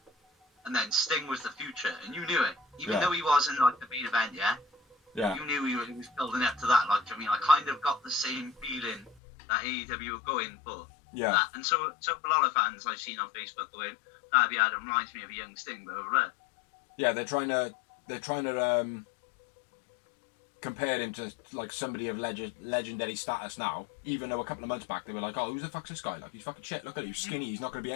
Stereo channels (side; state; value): right; drops out; at 9.2 s